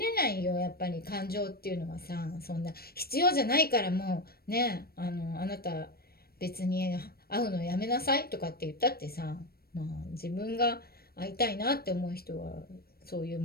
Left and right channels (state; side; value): late; right; 0.44 ms